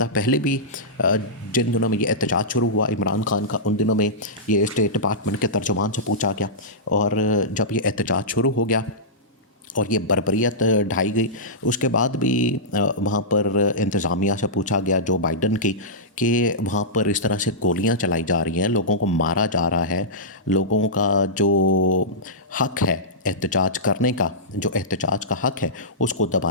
पहले भी जिन दिनों में ये एहतजाज शुरू हुआ इमरान खान का, उन दिनों में ये स्टेट डिपार्टमेंट के तर्जुमान से पूछा गया, और जब ये एहतजाज शुरू हो गया और ये बर्बरियत ढाई गई, उसके बाद भी वहाँ पर इंतज़ामिया से पूछा गया जो बाइडन की कि वहाँ पर इस तरह से गोलियाँ चलाई जा रही हैं, लोगों को मारा जा रहा है, लोगों का जो हक है एहतजाज करने का, जो एहतजाज का हक है उसको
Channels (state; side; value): normal; both; correlation -0.14